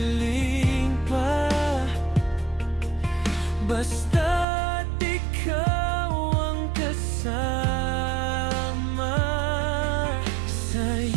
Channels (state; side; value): drops out; left; at 4.5 s